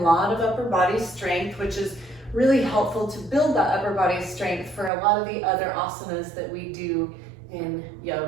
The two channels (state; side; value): drops out; left; at 4.9 s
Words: lot of upper body strength, which is really helpful to build that upper body strength for a lot of the other asanas that we do in